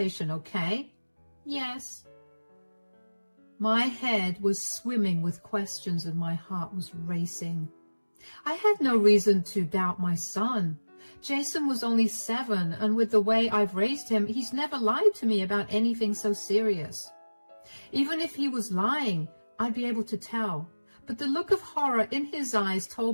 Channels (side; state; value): both; inverted; correlation -1.00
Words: okay? Yes. My head was swimming with questions and my heart was racing. I had no reason to doubt my son. Jason was only 7, and with the way I've raised him, he's never lied to me about anything so serious. Even if he was lying, I'd be able to tell. But the look of horror in his eyes